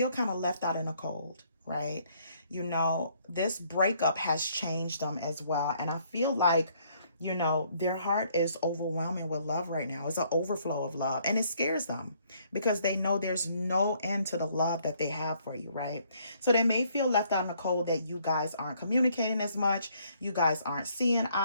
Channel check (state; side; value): inverted; both; correlation -0.66